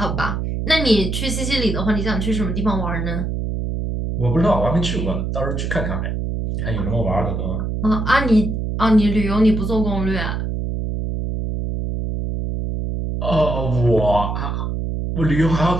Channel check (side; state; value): right; noise; hum, 2 dB below the sound